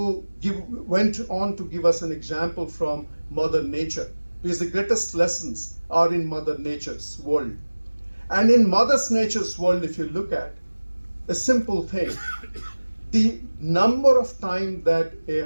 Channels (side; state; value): both; inverted; correlation -1.00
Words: on to give us an example from Mother Nature, because the greatest lessons are in Mother Nature's world. And in Mother Nature's world, if you look at a simple thing, the number of times that a